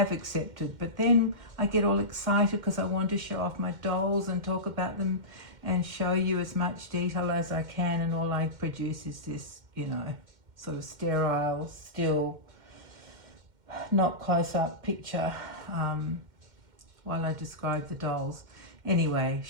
accepted, but then I get all excited because I want to show off my dolls and talk about them and show you as much detail as I can, and all I produce is this, you know, sort of sterile, still, not close-up picture while I describe the dolls. Anyway,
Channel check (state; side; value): late; left; 2.1 ms